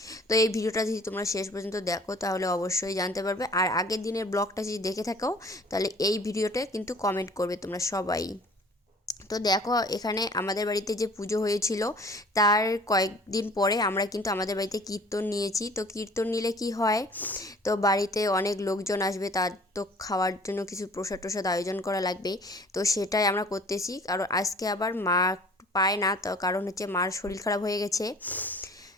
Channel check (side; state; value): both; normal; correlation 0.51